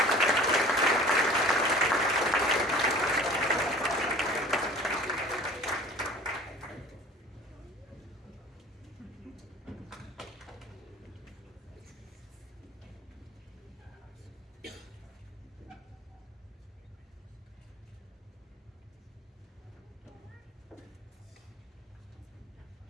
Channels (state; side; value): normal; both; correlation 0.44